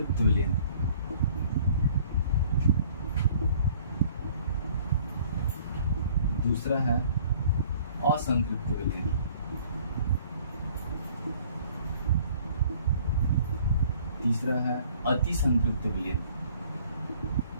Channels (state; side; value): inverted; both; correlation -0.55